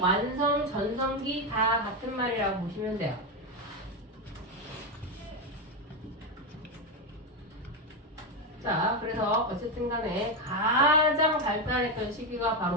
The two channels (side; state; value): both; normal; correlation 0.10